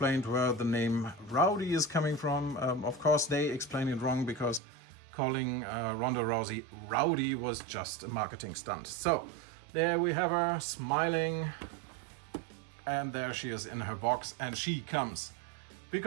where the name Rowdy is coming from. Of course, they explain it wrong because calling Ronda Rousey Rowdy was just a marketing stunt. So there we have her smiling. And there she is in her box, and she comes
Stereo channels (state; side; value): drops out; left; at 4.6 s